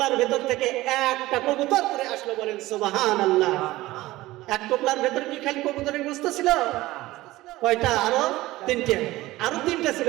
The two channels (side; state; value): left; quieter; 17.7 dB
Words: ভেতর থেকে একটা কবুতর করে আসলো, বলেন সুবহানাল্লাহ। এক টোপলার ভেতর কি খালি কবুতরের গোশত ছিল? কয়টা? আরো 3টে। আরো 3টে ছিল,